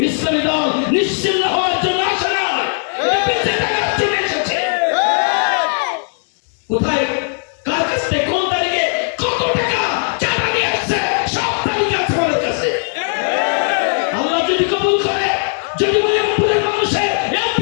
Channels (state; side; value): silent; right; digital silence